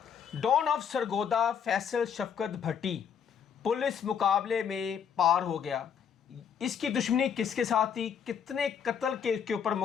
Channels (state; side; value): quieter; right; 7.6 dB